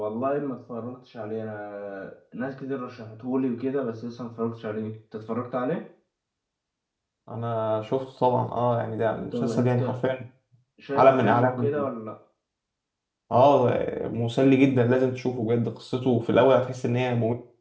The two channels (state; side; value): identical; both; correlation 1.00